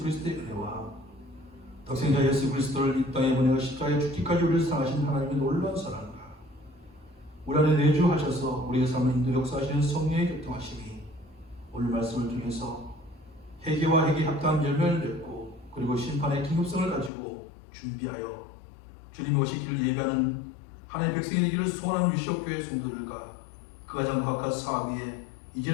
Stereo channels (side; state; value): right; drops out; at 17.1 s